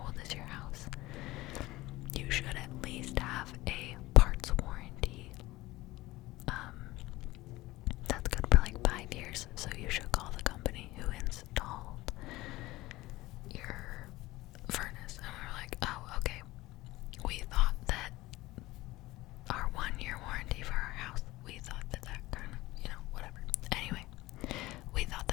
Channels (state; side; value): quieter; right; 18.7 dB